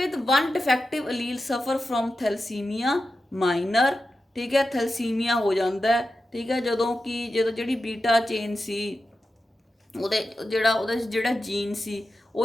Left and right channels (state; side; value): normal; both; correlation 0.91